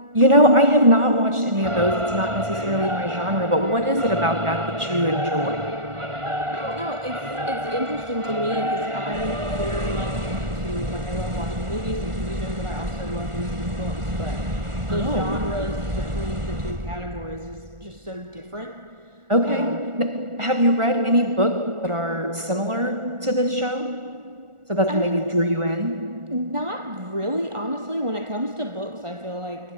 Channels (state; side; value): late; left; 1.4 ms